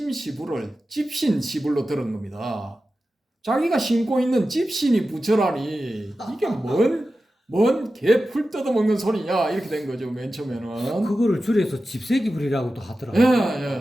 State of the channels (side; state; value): both; normal; correlation 0.93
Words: 집신시불로 들은 겁니다. 자기가 신고 있는 집신이 부처라니 이게 뭔 개 풀 뜯어먹는 소리냐 이렇게 된 거죠. 맨 처음에는 그거를 줄여서 집세기불이라고도 하더라고요.